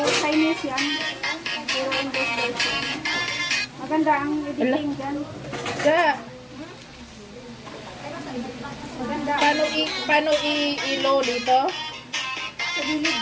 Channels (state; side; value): identical; both; correlation 1.00